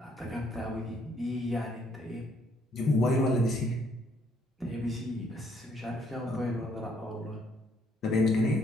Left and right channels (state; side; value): normal; both; correlation 0.68